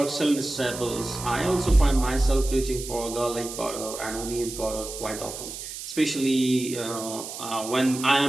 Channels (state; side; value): noise; right; hiss, 9 dB below the sound